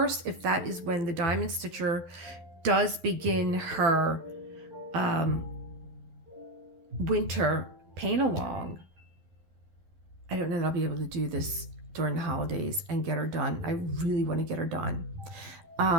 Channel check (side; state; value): left; late; 11 ms